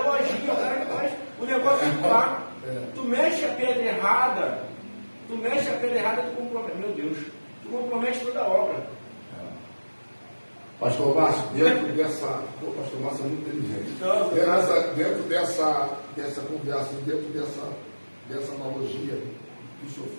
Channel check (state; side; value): inverted; both; correlation -1.00